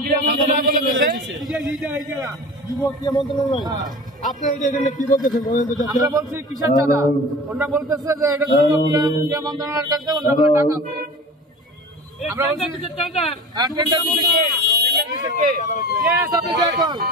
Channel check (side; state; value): both; normal; correlation 0.36